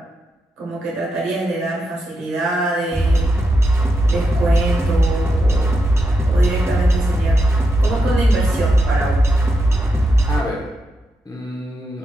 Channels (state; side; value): normal; both; correlation 0.85